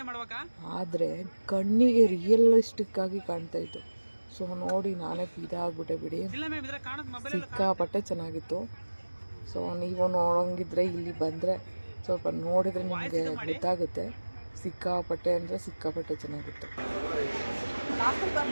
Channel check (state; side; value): inverted; both; correlation -1.00